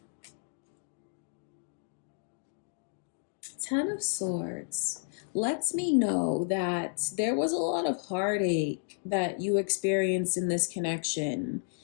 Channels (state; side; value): silent; right; digital silence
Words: Ten of Swords lets me know that there was a lot of heartache that you experienced in this connection.